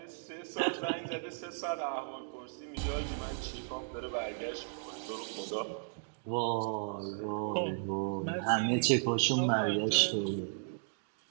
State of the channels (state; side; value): silent; left; digital silence